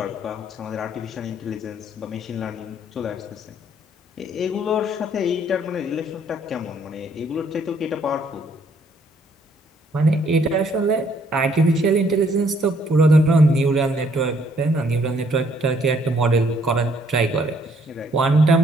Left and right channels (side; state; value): both; normal; correlation 0.66